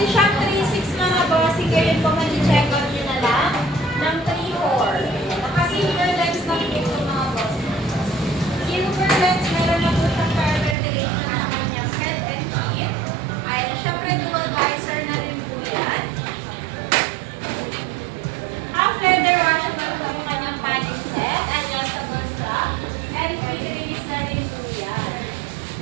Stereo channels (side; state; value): left; drops out; at 10.8 s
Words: siyang 3.6 mga boss. Ngayon po mag-check out nyo na lang ng 3.4. Naka-silver lens lang ito mga boss. Silver lens, meron na po siyang power ventilation sa kanyang head and feet. Ayan. Siyempre, dual visor na rin po yan. Half leather washable po yung kanyang padding set. Adjustable strap. And quick release na rin po yan.